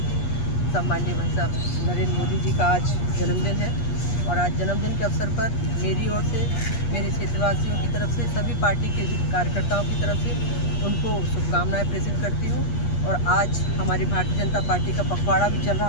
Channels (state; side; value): late; right; 8.4 ms